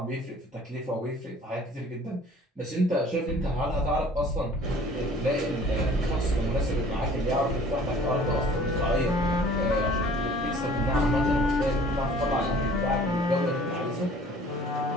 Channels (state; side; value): normal; both; correlation 0.51